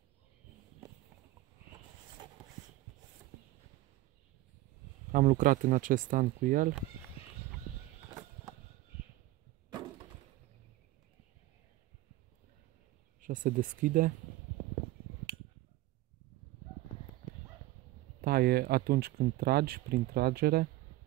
Am lucrat în acest an cu el. Așa se deschide. Taie atunci când tragi, prin tragere.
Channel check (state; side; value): quieter; left; 16.7 dB